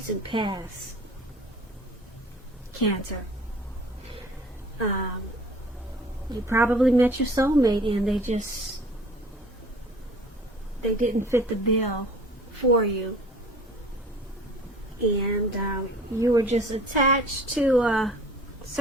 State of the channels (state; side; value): normal; both; correlation 0.48